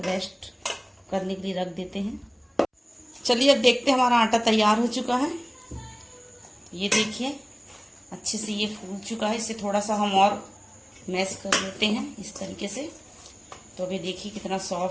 रेस्ट करने के लिए रख देते हैं। चलिए अब देखते हैं हमारा आटा तैयार हो चुका है। ये देखिए अच्छे से ये फूल चुका है। इसे थोड़ा सा हम और मैश कर लेते हैं इस तरीके से। तो अभी देखिए कितना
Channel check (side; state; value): both; identical; correlation 1.00